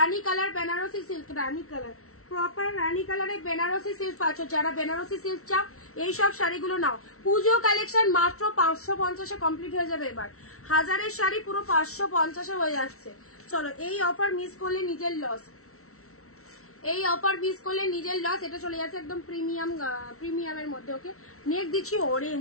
কালার, বেনারসি সিল্ক, রানী কালার, প্রপার রানী কালারে বেনারসি সিল্ক পাচ্ছ। যারা বেনারসি সিল্ক চাও এইসব শাড়িগুলো নাও। পুজো কালেকশন মাত্র 550-এ কমপ্লিট হয়ে যাবে। এবার 1000-এর শাড়ি পুরো 550-এ হয়ে যাচ্ছে। চলো এই অফার মিস করলে নিজের লস, এই অফার মিস করলে নিজের লস। এটা চলে যাচ্ছে একদম প্রিমিয়ামের মধ্যে। ওকে, নেক্সট দিচ্ছি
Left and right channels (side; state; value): right; late; 0.63 ms